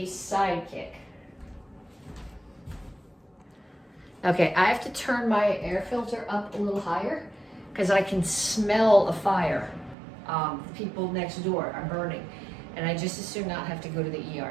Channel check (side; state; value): left; drops out; at 10.0 s